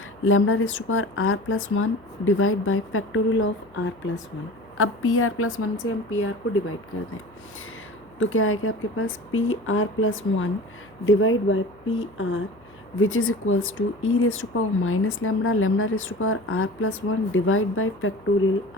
lambda raise to power R+1 divide by factorial of R+1। अब PR+1 से हम PR को डिवाइड कर दें तो क्या आएगा आपके पास, PR+1 divide by PR which is equals to e raised to power minus lambda, lambda raised to power R+1 divide by factorial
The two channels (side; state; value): left; noise; hum, 27 dB below the sound